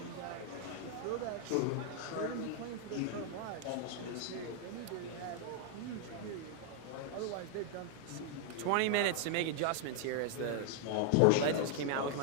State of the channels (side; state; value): both; different; correlation 0.00